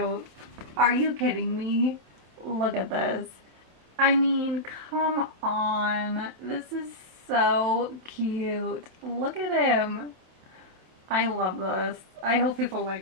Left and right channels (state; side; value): late; left; 26 ms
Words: Are you kidding me? Look at this. I mean, come on. This is so cute. Look at him. I love this. I hope people